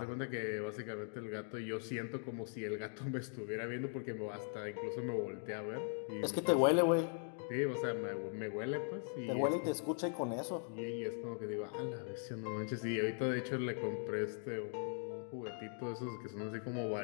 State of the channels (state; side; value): silent; right; 51 dB below the other